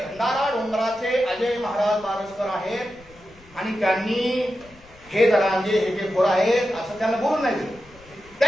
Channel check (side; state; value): left; noise; rumble, 25 dB below the sound